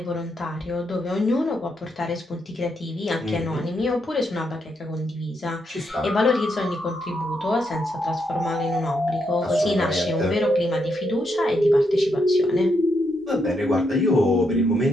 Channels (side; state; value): both; normal; correlation 0.79